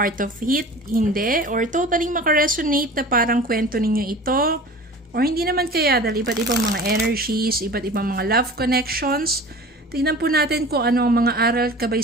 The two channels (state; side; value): normal; both; correlation 0.39